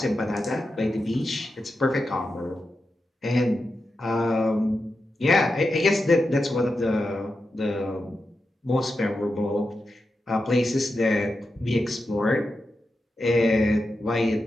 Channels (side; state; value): both; normal; correlation 0.89